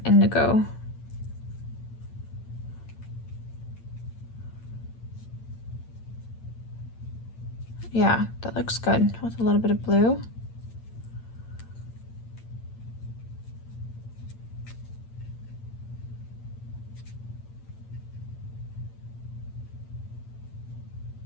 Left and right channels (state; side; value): late; right; 8.8 ms